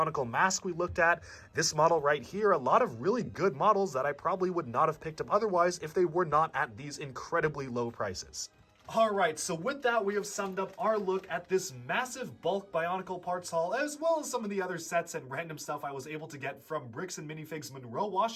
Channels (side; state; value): both; identical; correlation 1.00